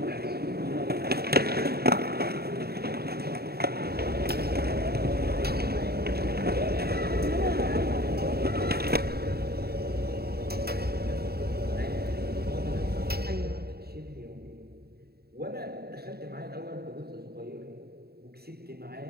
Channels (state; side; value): late; left; 0.46 ms